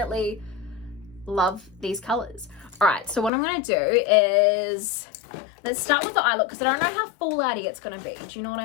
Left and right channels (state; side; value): drops out; right; at 3.3 s